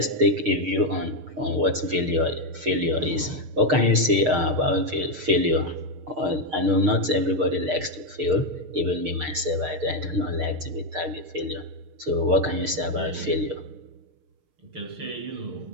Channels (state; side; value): late; left; 6.6 ms